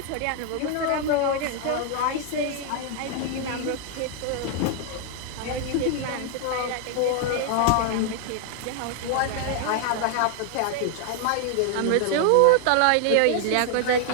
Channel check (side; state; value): both; different; correlation 0.00